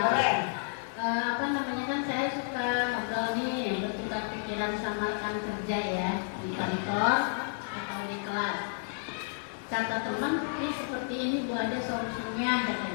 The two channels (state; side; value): silent; right; digital silence